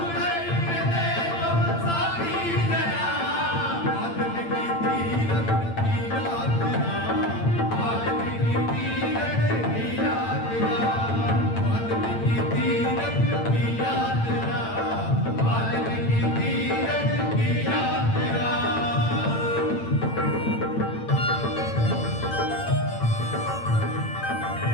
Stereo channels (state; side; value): late; right; 8.9 ms